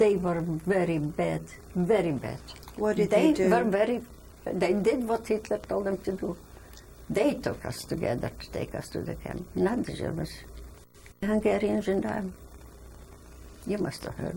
were very bad, very bad. What did they do? They did what Hitler told them to do. They took us together to take us to the camp, not the Germans. The Hungarians and you must have heard.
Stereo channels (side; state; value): both; identical; correlation 1.00